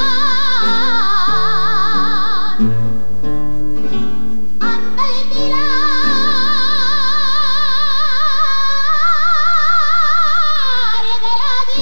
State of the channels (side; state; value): both; inverted; correlation -1.00